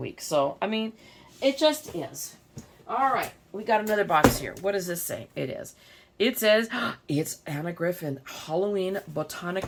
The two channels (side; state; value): both; identical; correlation 1.00